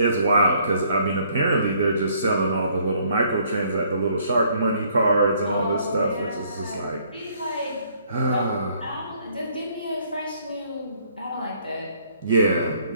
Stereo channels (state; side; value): inverted; both; correlation -0.65